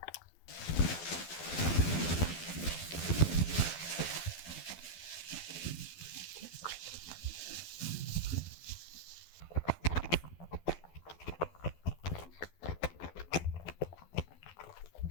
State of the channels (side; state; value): right; late; 12 ms